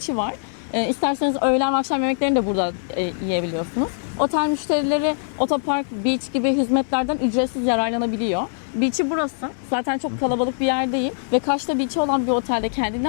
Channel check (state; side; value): silent; right; digital silence